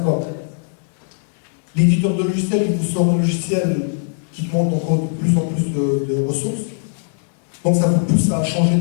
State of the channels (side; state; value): right; silent; digital silence